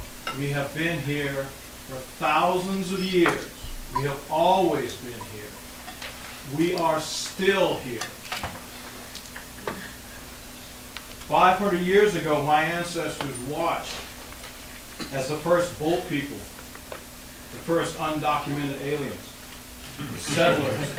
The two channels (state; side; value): identical; both; correlation 1.00